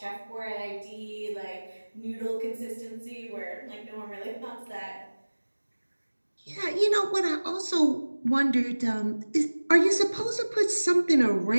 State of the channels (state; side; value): inverted; both; correlation -1.00